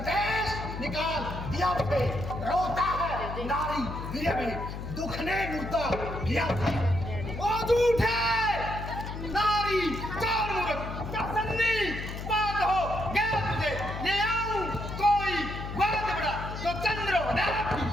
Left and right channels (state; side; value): noise; left; hum, 7 dB below the sound